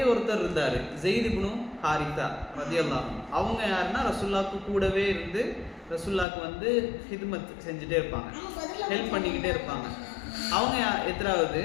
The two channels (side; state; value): right; drops out; at 6.2 s